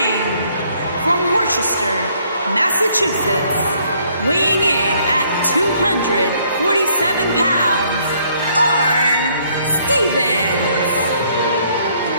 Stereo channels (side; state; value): both; inverted; correlation -0.65